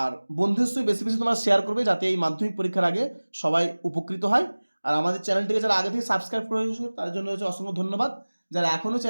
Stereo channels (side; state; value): both; inverted; correlation -1.00